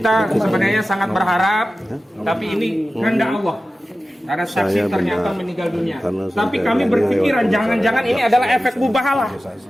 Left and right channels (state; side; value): normal; both; correlation 0.95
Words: sebenarnya sangat berharap, tapi ini kehendak Allah. Karena saksi ternyata meninggal dunia. Tapi kami berpikiran jangan-jangan ini adalah efek mubahalah.